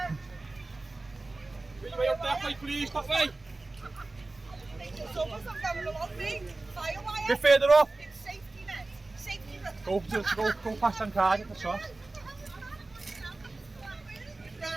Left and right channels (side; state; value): left; quieter; 3.2 dB